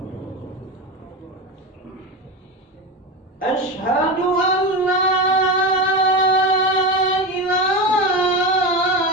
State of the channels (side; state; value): both; normal; correlation 0.20